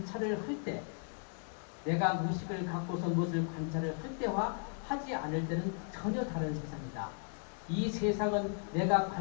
할 때 내가 의식을 갖고서 무엇을 관찰을 할 때와 하지 않을 때는 전혀 다른 세상이다. 이 세상은 내가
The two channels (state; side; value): silent; right; 54 dB below the other